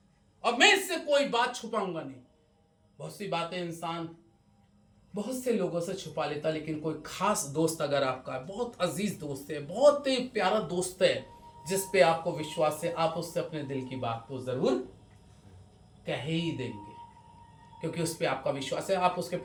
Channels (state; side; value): identical; both; correlation 1.00